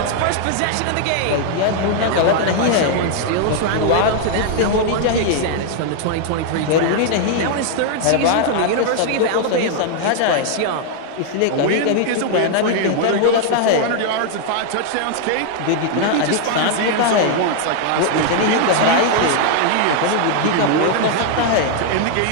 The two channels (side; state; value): both; different; correlation 0.00